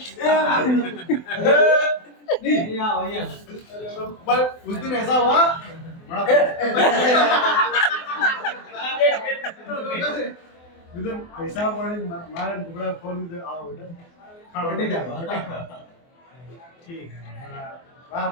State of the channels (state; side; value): late; right; 24 ms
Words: पर उस दिन ऐसा हुआ पैसा मारे टुकड़ा फोन में आओ ठीक है